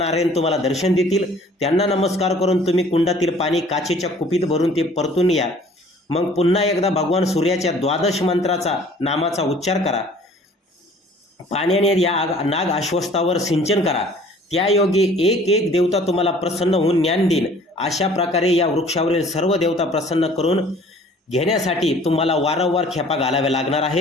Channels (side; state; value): both; normal; correlation 0.52